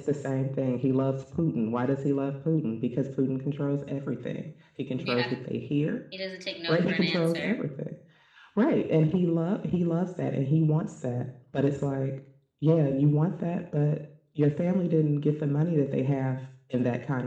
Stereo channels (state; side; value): identical; both; correlation 1.00